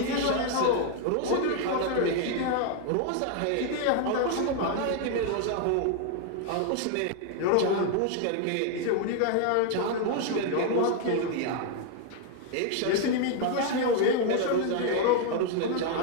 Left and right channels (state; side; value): different; both; correlation 0.00